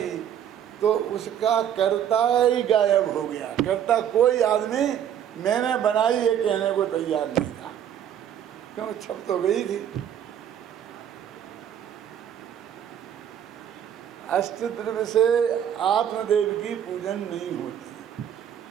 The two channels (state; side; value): quieter; left; 9.7 dB